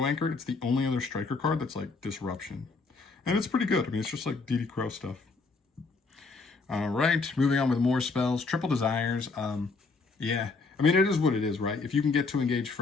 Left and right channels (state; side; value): quieter; right; 4.1 dB